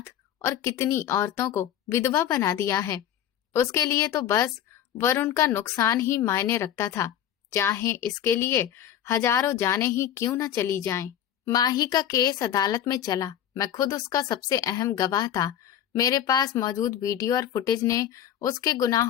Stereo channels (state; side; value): quieter; right; 10.4 dB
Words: और कितनी औरतों को विधवा बना दिया है। उसके लिए तो बस वरुण का नुकसान ही मायने रखता था, चाहे इसके लिए हजारों जानें ही क्यों न चली जाएं। माही का केस अदालत में चला। मैं खुद उसका सबसे अहम गवाह था। मेरे पास मौजूद वीडियो और फुटेज ने उसके